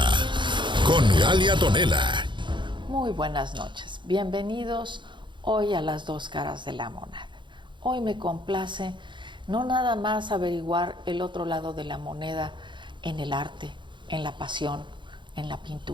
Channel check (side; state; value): left; late; 0.23 ms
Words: con Galia Tonela. Muy buenas noches, bienvenidos hoy a las dos caras de la moneda. Hoy me complace no nada más averiguar el otro lado de la moneda en el arte, en la pasión, en la